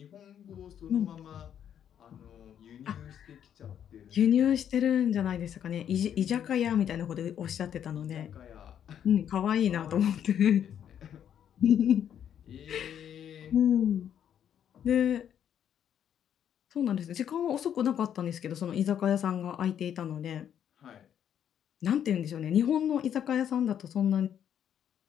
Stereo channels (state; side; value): quieter; right; 9.4 dB